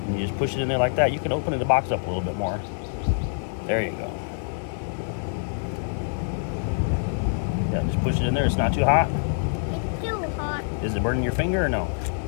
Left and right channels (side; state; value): right; silent; digital silence